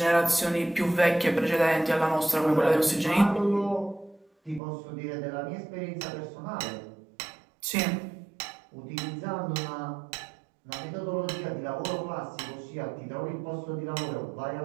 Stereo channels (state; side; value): drops out; left; at 4.6 s